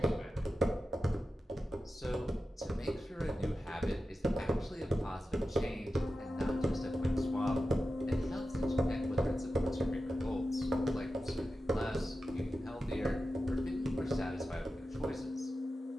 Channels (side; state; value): both; normal; correlation 0.92